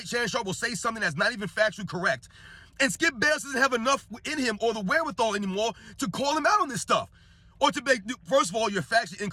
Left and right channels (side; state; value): both; identical; correlation 1.00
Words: Shannon Sharpe will say something that's not even factually correct. And Skip Bayless doesn't have enough in him or the wherewithal anymore to call him out on this stuff. Or to make, first of all, your facts are